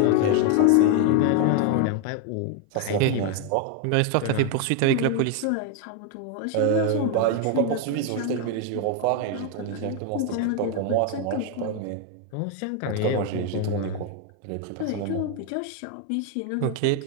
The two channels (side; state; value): both; different; correlation 0.01